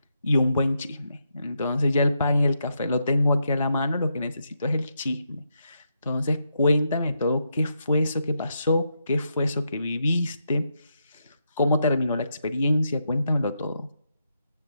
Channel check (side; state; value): both; inverted; correlation -0.81